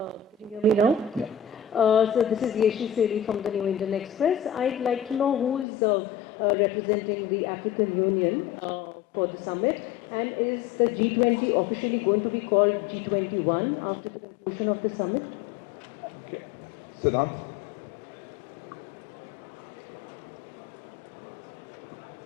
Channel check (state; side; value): drops out; right; at 5.7 s